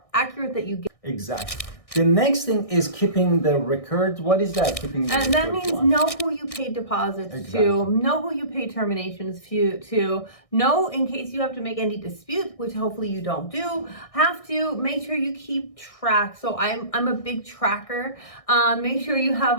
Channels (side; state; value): right; late; 1.6 ms